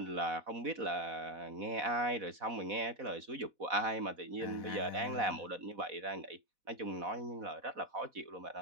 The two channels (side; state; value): left; late; 4.1 ms